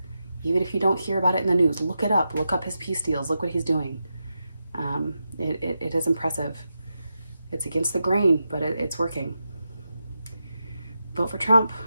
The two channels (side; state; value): both; inverted; correlation -0.87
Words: Even if you don't hear about it in the news, look it up. Look up his peace deals. Look what he's doing. It is impressive. It's against the grain, but it's working. Vote for Trump.